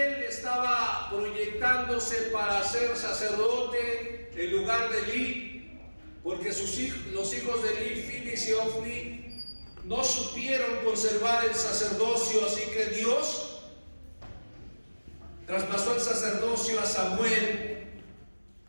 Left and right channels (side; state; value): both; inverted; correlation -1.00